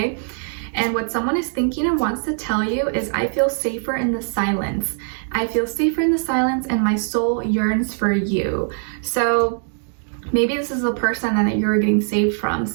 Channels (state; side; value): silent; left; 65 dB below the other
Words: And what someone is thinking and wants to tell you is, I feel safer in the silence. I feel safer in the silence and my soul yearns for you. So maybe this is a person that you're getting saved from,